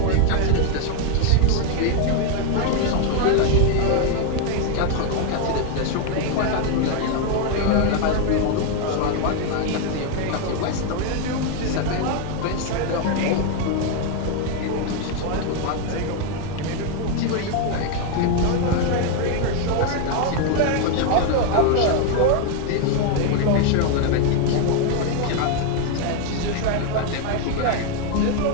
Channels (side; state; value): both; different; correlation 0.01